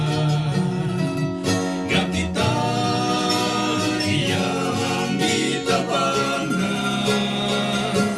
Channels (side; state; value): both; identical; correlation 1.00